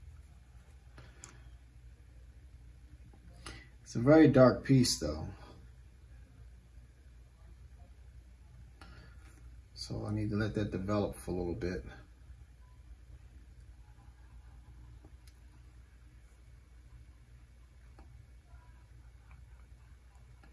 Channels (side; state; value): both; identical; correlation 1.00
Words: It's a very dark piece though. So I need to let that develop for a little bit.